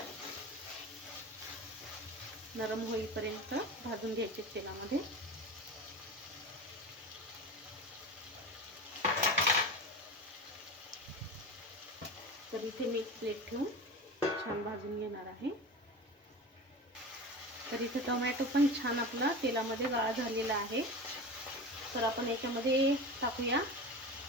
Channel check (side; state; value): both; normal; correlation 0.29